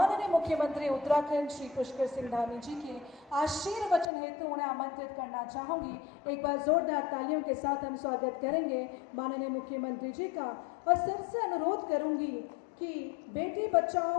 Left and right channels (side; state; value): right; drops out; at 4.1 s